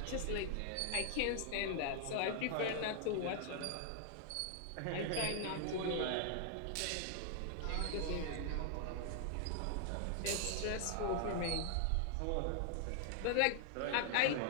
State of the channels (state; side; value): different; both; correlation 0.00